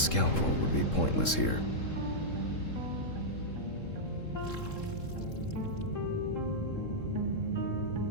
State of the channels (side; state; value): right; late; 3.7 ms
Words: would be pointless here.